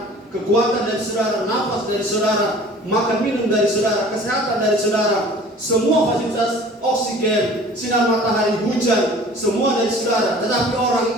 kekuatan dari saudara, nafas dari saudara, makan minum dari saudara, kesehatan dari saudara. Semua fasilitas oksigen, sinar matahari, hujan, semua dari saudara. Tetapi orang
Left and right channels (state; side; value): normal; both; correlation 0.47